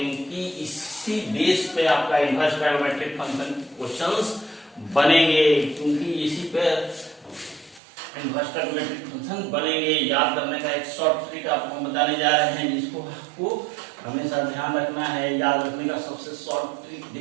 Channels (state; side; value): drops out; left; at 7.8 s